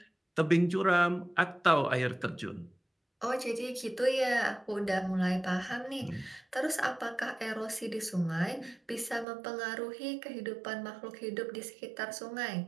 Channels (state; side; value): drops out; left; at 9.2 s